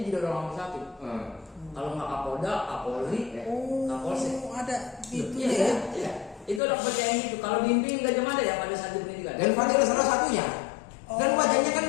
jadi orang nomor satu. Kalau nggak Kapolda, Kapolri, Kapolsek. Ada itu Iya, ya. iya. Itu ada kepercayaan itu. Kalau di PIN Gajah Mada ya pada saat di pendidikan. Dan Fadil salah satunya. Dan wajahnya kan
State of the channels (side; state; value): right; drops out; at 6.6 s